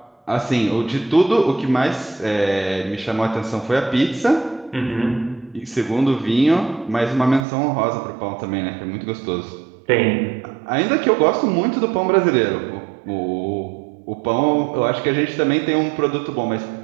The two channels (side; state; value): left; drops out; at 7.5 s